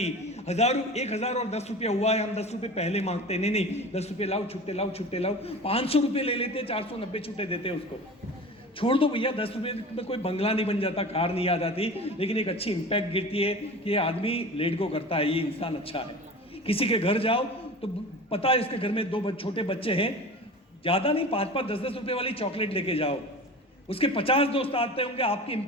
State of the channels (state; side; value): normal; both; correlation 0.36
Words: 1000 और 10 रुपया हुआ है, हम 10 रुपये पहले मांगते नहीं, 10 रुपये लाओ, छुट्टे लाओ, छुट्टे लाओ, 500 रुपये ले लेते, 490 छुट्टे देते उसको। छोड़ दो भैया, 10 रुपये में कोई बंगला नहीं बन जाता, कार नहीं आ जाती, लेकिन एक अच्छी इंपैक्ट गिरती है कि ये आदमी लेट गो करता है, ये इंसान अच्छा है। किसी के घर जाओ तो पता है इसके घर में 2 छोटे बच्चे हैं, ज्यादा नहीं, 5-5, 10-10 रुपए वाली चॉकलेट लेके जाओ, उसके 50 दोस्त आते होंगे, आपकी